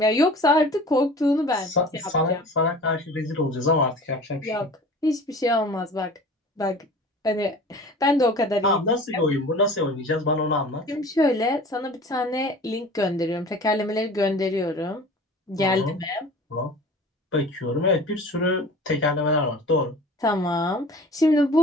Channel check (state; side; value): normal; both; correlation 0.42